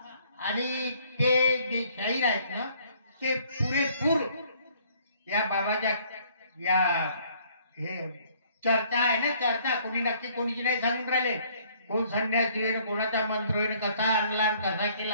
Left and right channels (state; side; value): inverted; both; correlation -0.61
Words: आणि ते जे शाहीर आहेत ना, ते पुरेपूर या बाबाच्या या हे चर्चा आहे ना, चर्चा कोणी नक्की कोणीची नाही सांगून राहिले. कोण संन्यासी होईन, कोणाचा मंत्र होईन, कसा आणला कसा